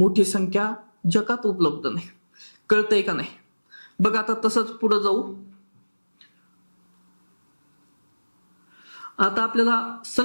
संख्या जगात उपलब्ध नाही. कळतंय का नाही? बघ आता तसंच पुढे जाऊ. आता आपल्याला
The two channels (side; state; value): both; inverted; correlation -1.00